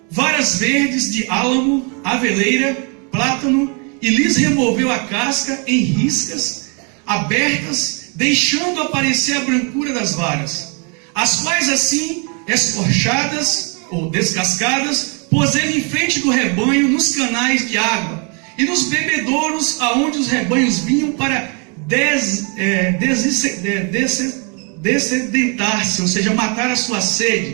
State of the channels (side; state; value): left; quieter; 35.8 dB